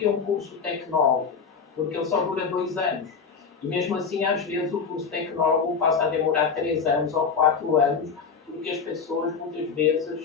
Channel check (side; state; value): right; quieter; 5.6 dB